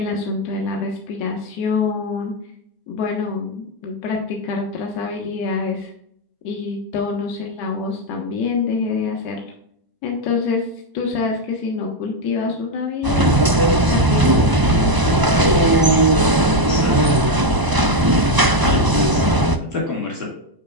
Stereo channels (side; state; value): left; late; 1.0 ms